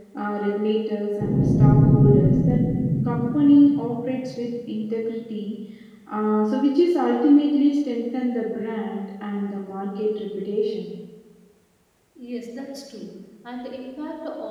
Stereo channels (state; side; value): identical; both; correlation 1.00